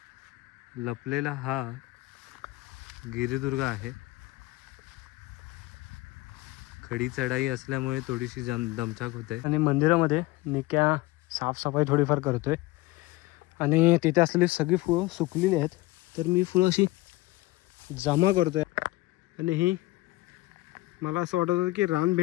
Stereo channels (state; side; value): quieter; right; 19.8 dB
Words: लपलेला हा गिरिदुर्ग आहे. खडी चढाई असल्यामुळे थोडीशी दमछाक होते. आणि मंदिरामध्ये निक्या साफसफाई थोडीफार करतोय. आणि तिथे असलेली सगळी फुलं सुकलेली आहेत, तर मी फुलं अशी जमा करतोय. आणि ही मला असं वाटत होतं की